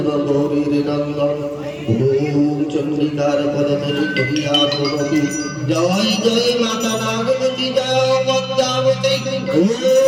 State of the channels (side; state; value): both; identical; correlation 1.00